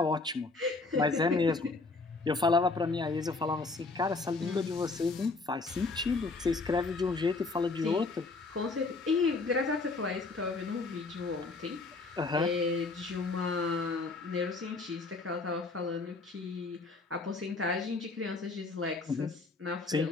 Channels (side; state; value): right; quieter; 3.8 dB